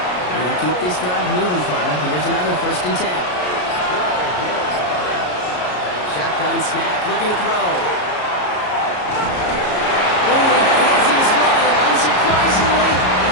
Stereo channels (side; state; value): right; late; 33 ms